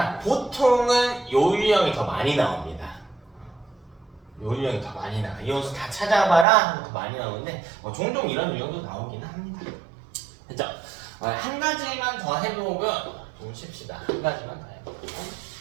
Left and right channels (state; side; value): drops out; left; at 6.5 s